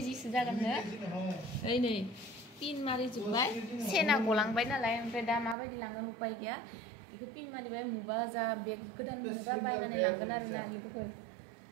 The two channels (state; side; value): drops out; left; at 5.6 s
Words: जागोन नो ओइ नै पिन मारि जोबबाय सेना गलांबाय नालाय ओमफ्राय दा माबायदि लांगोन उपाय गैया बेखौ पिन मारिबाय मुबा जा बेग गोदान मोनोबा बायनानै लांगोन आरोना लोगोफोर